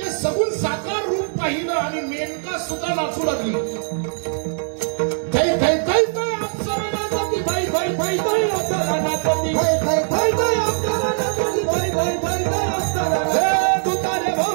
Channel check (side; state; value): left; silent; 65 dB below the other